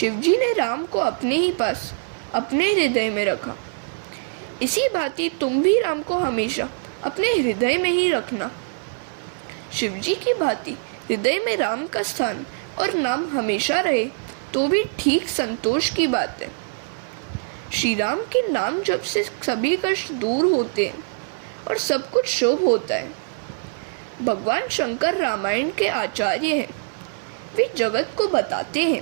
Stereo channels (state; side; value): silent; left; 56 dB below the other